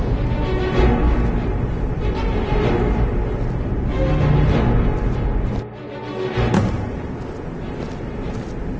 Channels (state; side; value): identical; both; correlation 1.00